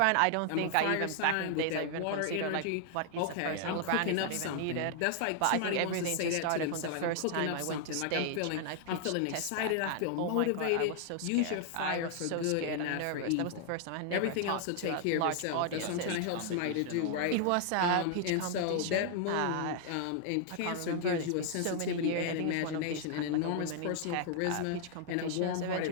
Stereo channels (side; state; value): both; different; correlation 0.00